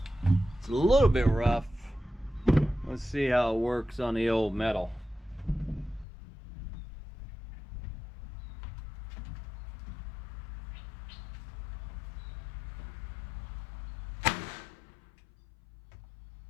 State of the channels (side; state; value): right; drops out; at 6.1 s